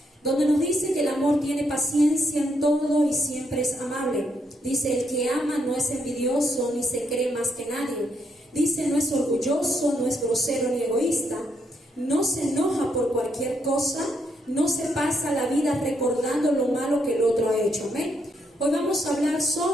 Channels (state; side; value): normal; both; correlation 0.76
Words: donde nos dice que el amor tiene paciencia en todo y siempre es amable. Dice, el que ama no es envidioso ni se cree más que nadie. Dice, no es orgulloso, no es grosero ni egoísta, no se enoja por cualquier cosa, no se pasa la vida recordando lo malo que el otro ha hecho, amén. Hoy vamos a hablar